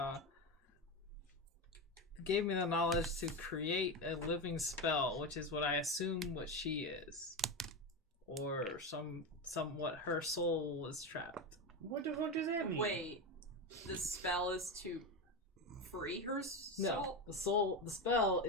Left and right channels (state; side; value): normal; both; correlation 0.17